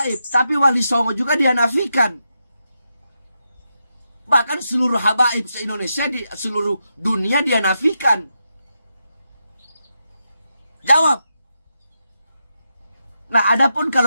tapi Wali Songo juga dia nafikan. Bahkan seluruh habaib se-Indonesia, di seluruh dunia dia nafikan. Jawab. Nah, adapun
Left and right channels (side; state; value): both; inverted; correlation -0.85